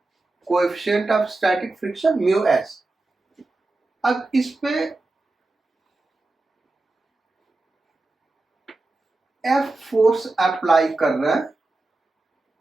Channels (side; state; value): left; quieter; 3.1 dB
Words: coefficient of static friction mu s। अब इस पे F फोर्स अप्लाई कर रहा है